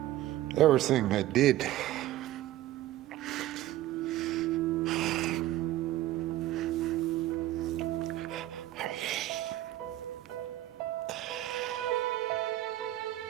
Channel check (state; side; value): quieter; left; 14.7 dB